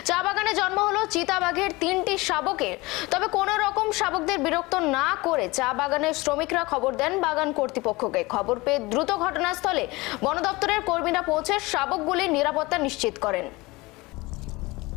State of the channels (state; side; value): quieter; right; 22.5 dB